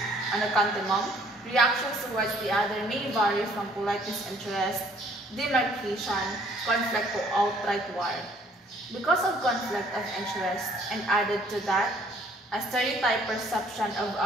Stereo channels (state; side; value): normal; both; correlation 0.60